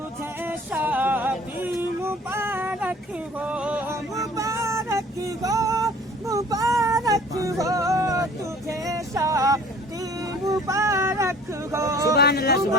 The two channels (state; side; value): normal; both; correlation 0.50